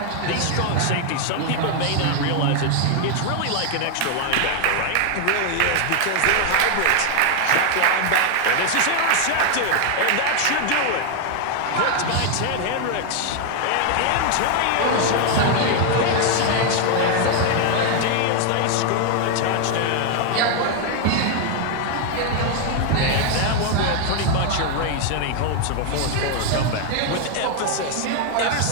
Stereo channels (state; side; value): different; both; correlation 0.00